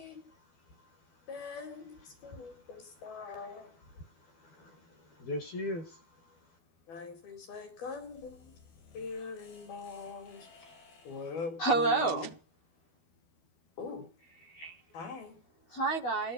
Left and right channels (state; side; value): late; right; 12 ms